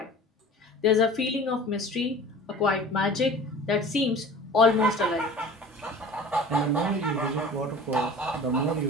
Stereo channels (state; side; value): normal; both; correlation 0.42